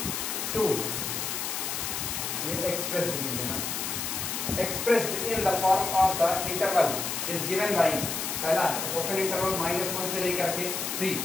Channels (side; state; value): left; noise; hiss, 3 dB below the sound